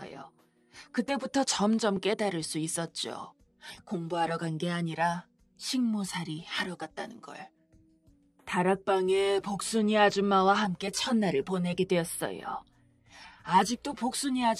그때부터 점점 깨달을 수 있었죠. 공부하러 간 게 아니라 식모살이 하러 갔다는 걸. 다락방에 복순이 아줌마와 함께 첫날을 보내게 되었어요. 아직도 복순이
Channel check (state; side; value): identical; both; correlation 1.00